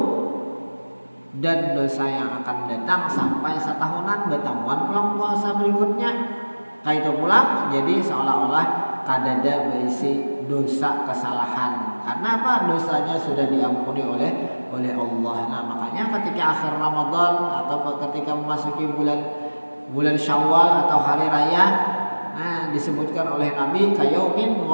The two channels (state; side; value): inverted; both; correlation -1.00